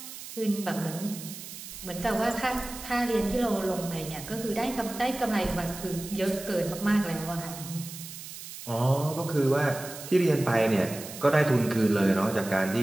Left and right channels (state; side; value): noise; right; hiss, 12 dB below the sound